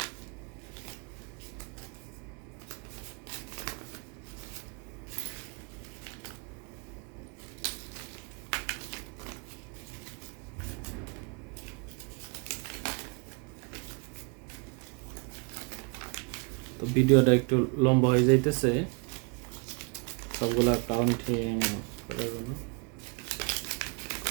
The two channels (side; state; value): left; quieter; 33.2 dB